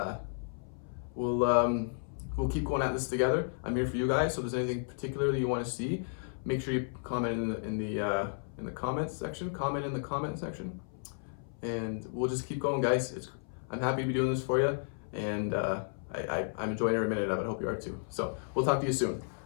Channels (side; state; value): right; silent; 56 dB below the other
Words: we'll keep going at this together. I'm here for you guys, so if there's anything particular that you want to see, make sure you comment in the comments section. Comment in the comment section, and we'll just keep going, guys. I'm happy to be doing this for you, and I'm enjoying every minute of it. I hope you are too. So we'll talk to you soon.